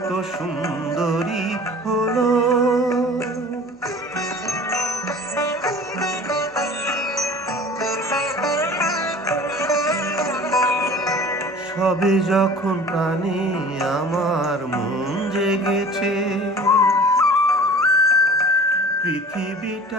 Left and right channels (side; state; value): both; normal; correlation 0.43